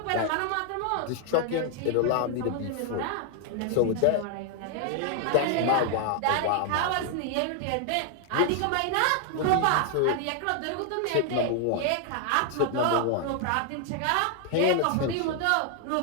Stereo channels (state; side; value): different; both; correlation 0.00